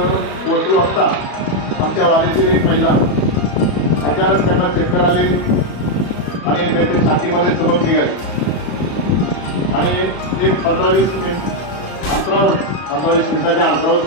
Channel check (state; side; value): late; right; 34 ms